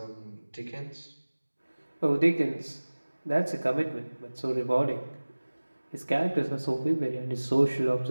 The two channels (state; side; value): inverted; both; correlation -1.00